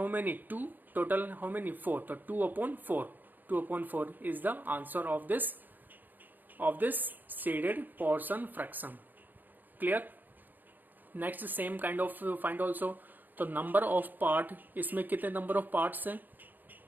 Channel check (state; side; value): late; left; 0.087 ms